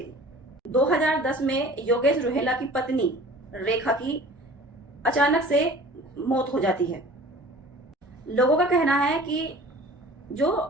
2010 में योगेश रोहेला की पत्नी रेखा की अचानक से मौत हो जाती है। लोगों का कहना है कि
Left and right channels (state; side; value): normal; both; correlation 0.44